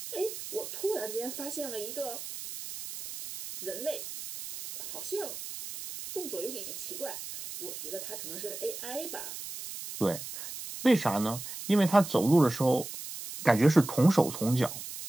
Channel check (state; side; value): noise; right; hiss, 9 dB below the sound